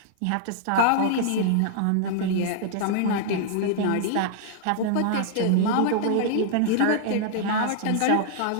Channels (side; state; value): both; different; correlation -0.01